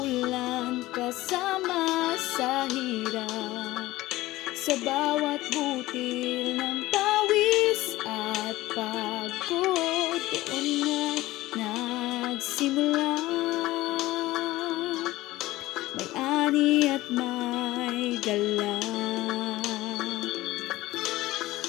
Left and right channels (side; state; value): right; quieter; 17.7 dB